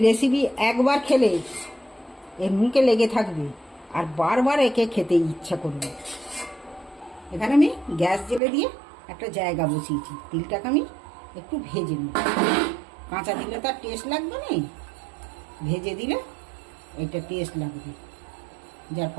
রেসিপি একবার খেলে এর মুখে লেগে থাকবে আর বারবার একে খেতে ইচ্ছা করবে। এখানে আমি গ্যাস জ্বেলে দিয়ে একটা জায়গা বসিয়েছি, তিলটাকে আমি একটু ভেজে নিই। কাঁচা দিলে তার টেস্ট লাগবে না, ভেজে দিলে এটা টেস্ট লাগবে, যার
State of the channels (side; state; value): left; drops out; at 8.4 s